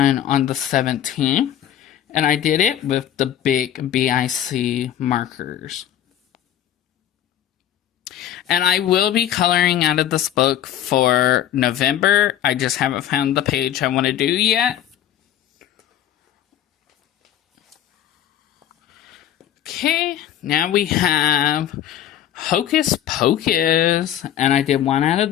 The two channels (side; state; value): right; quieter; 11.1 dB